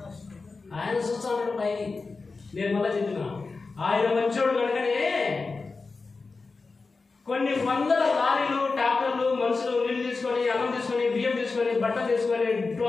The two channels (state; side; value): quieter; right; 4.1 dB